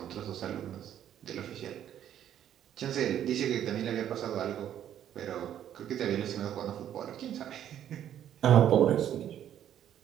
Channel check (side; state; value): left; quieter; 10.5 dB